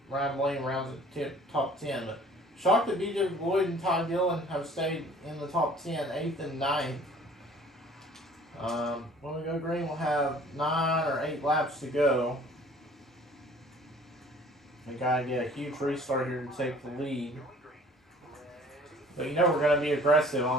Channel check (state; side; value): normal; both; correlation 0.52